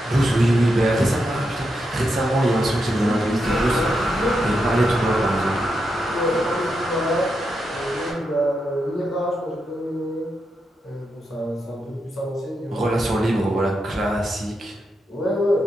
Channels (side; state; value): both; normal; correlation 0.85